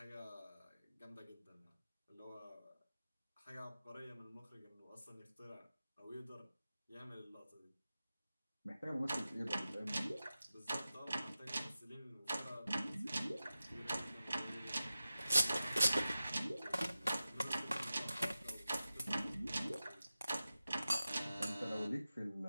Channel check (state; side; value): inverted; both; correlation -0.94